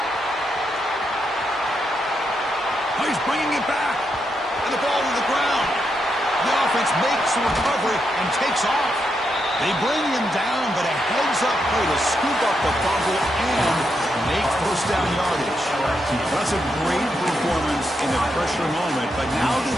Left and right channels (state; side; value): normal; both; correlation 0.82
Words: Oh, he's bringing it back. And the ball to the ground. The offense makes the recovery and takes off. They bring him down, but a heads-up play to scoop up the fumble and make first down yardage. That's a great performance in a pressure moment, but now